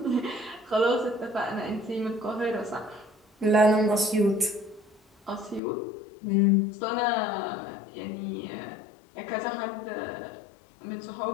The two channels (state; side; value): drops out; right; at 5.6 s